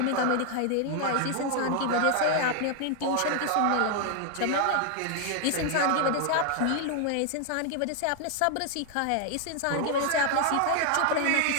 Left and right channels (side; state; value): both; different; correlation 0.00